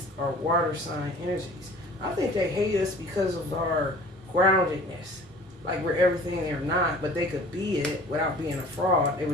are water sign energies. I think they hate us because of our groundedness. Like we're everything they're not, but they could be it without being a fraud. They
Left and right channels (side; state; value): both; normal; correlation 0.47